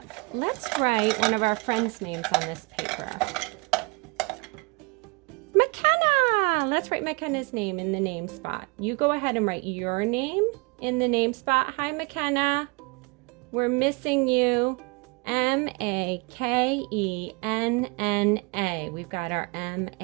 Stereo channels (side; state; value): left; quieter; 29.0 dB